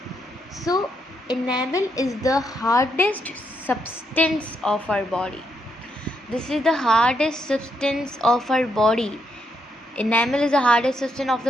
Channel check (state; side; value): normal; both; correlation 0.78